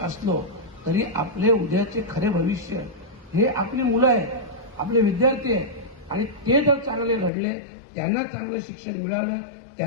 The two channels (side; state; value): right; drops out; at 7.3 s